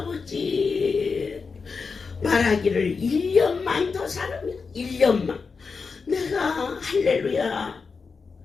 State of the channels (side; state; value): right; quieter; 4.9 dB